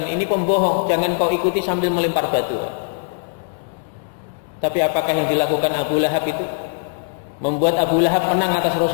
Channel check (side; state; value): right; silent; 65 dB below the other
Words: ini pembohong, jangan kau ikuti sambil melempar batu. Tapi apakah yang dilakukan Abu Lahab itu membuat Abu Lahab menang atas